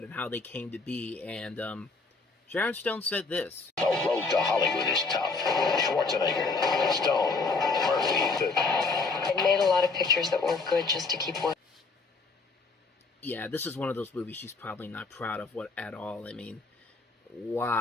and how they came to be, and Sharon Stone said this. The road to Hollywood is tough. Schwarzenegger, Stone, Murphy. I made a lot of pictures that weren't good just to keep working. Yeah, this is one of those movies she's probably not proud of at all. I mean,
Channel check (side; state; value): right; quieter; 4.0 dB